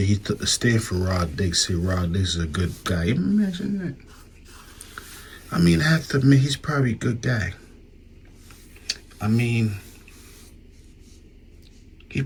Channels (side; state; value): both; identical; correlation 1.00